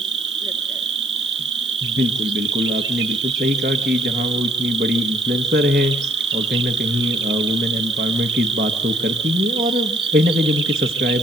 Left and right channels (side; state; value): both; normal; correlation 0.64